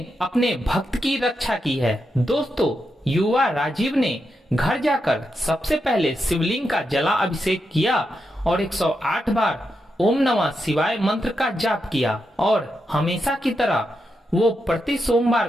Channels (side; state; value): both; normal; correlation 0.85